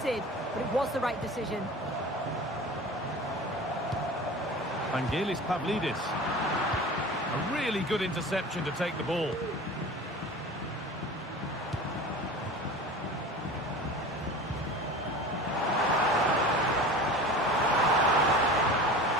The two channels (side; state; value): both; normal; correlation 0.36